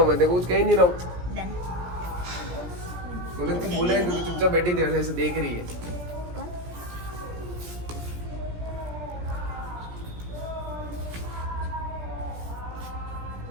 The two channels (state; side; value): late; left; 17 ms